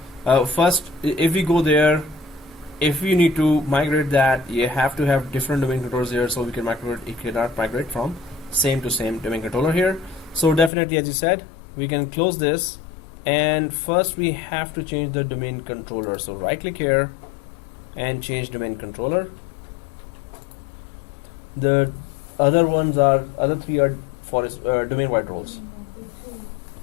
first, if we go there, if we need to migrate that, you have to have different domain controllers here, so we can migrate. You cannot migrate from same to same domain controller here. So definitely, as you said, we can close this, and first we have to change the domain controller. So right click here and change domain controller. The other three are forest domain wide roles.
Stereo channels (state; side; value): drops out; right; at 10.7 s